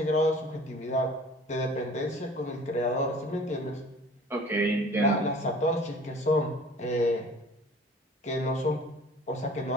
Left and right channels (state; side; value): normal; both; correlation 0.47